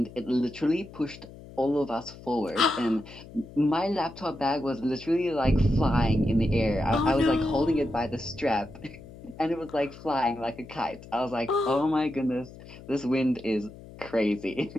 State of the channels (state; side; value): noise; left; hum, 17 dB below the sound